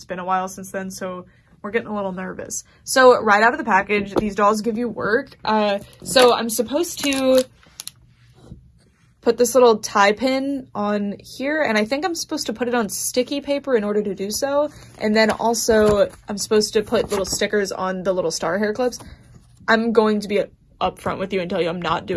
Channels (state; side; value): identical; both; correlation 1.00